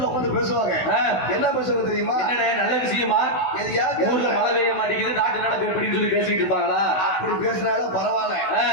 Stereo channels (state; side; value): late; right; 16 ms